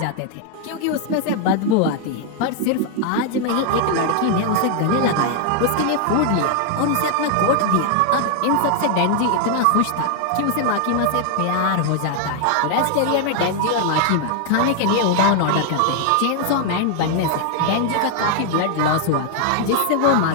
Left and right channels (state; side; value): different; both; correlation 0.00